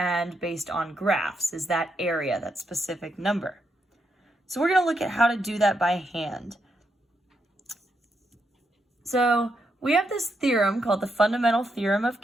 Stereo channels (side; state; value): both; normal; correlation 0.81